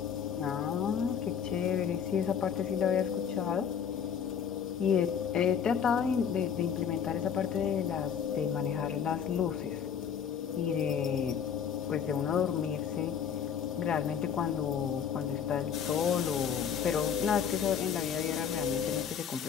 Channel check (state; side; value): quieter; right; 7.7 dB